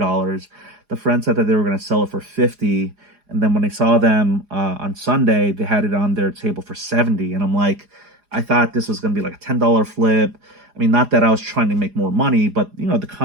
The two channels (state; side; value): late; left; 4.9 ms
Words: The friend said that they were going to sell it for 50. And then when I saw them on Sunday, they had it on their table for 70. And I'm like, I thought this was going to be like a $10 flip. I mean, not that I was trying to make more money, but the